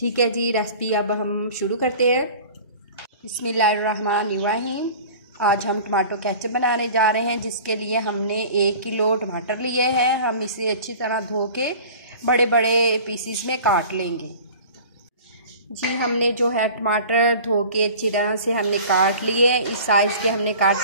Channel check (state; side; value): inverted; both; correlation -0.42